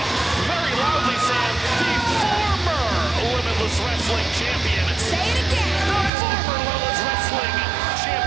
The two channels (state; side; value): drops out; left; at 6.1 s